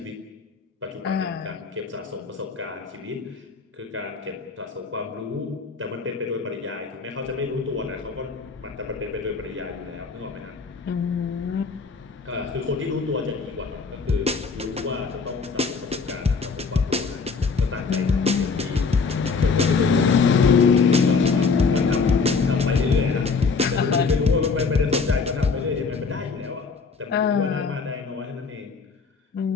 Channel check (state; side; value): quieter; right; 4.8 dB